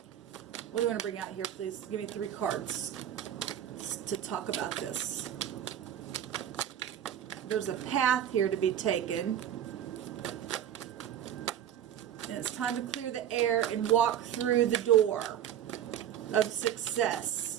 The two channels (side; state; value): left; quieter; 10.3 dB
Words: What do you want to bring out here, please? Give me 3 cards to talk about this. There's a path here to be taken. And it's time to clear the air and walk through the door of